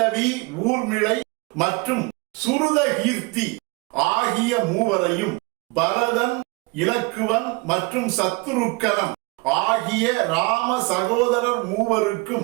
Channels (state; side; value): quieter; left; 26.1 dB